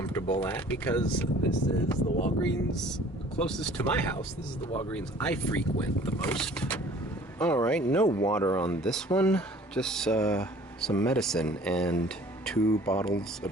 at, because this is the Walgreens closest to my house. This is the Walgreens I frequent the most. All right, no water on this one, just some medicine, and 3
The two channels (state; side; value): normal; both; correlation 0.51